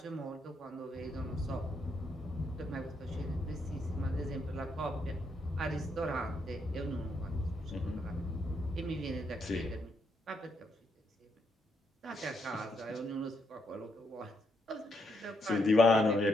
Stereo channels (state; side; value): normal; both; correlation 0.77